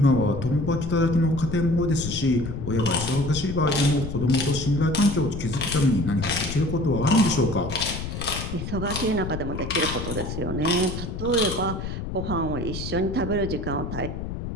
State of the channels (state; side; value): noise; left; rumble, 6 dB below the sound